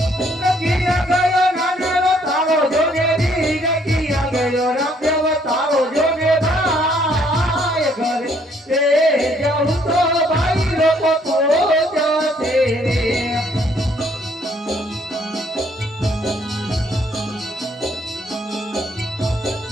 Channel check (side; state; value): both; normal; correlation 0.66